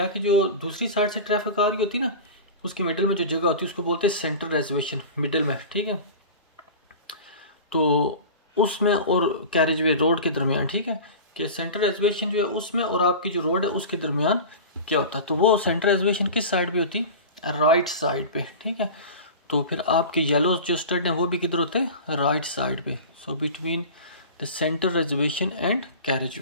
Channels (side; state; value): both; inverted; correlation -0.33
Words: कि जो दूसरी साइड से ट्रैफिक आ रही होती है ना उसके मिडिल में जो जगह होती है उसको बोलते हैं सेंटर रिजर्वेशन, मिडिल में, ठीक है। तो उसमें और कैरेज वे रोड के दरमियान, ठीक है, कि सेंटर रिजर्वेशन जो है उसमें और आपकी जो रोड है उसके दरमियान क्या होता है, तो वो सेंटर रिजर्वेशन किस साइड पे होती है, राइट साइड पे, ठीक है। तो फिर आपके येलो जो स्टड है वो भी किधर होते हैं, राइट साइड पे। So between the centre reservation and कैरेज